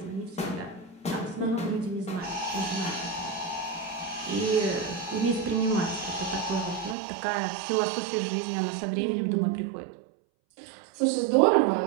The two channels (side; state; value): left; drops out; at 7.0 s